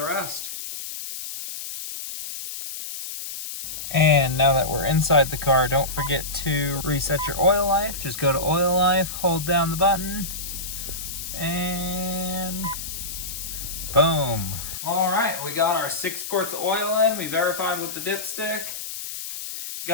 rest. And now that we're inside the car, don't forget to reset your oil life. Just go to oil life, hold down the button, and we got our 6 quarts of oil in. We verified with the dipstick.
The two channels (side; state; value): left; noise; hiss, 8 dB below the sound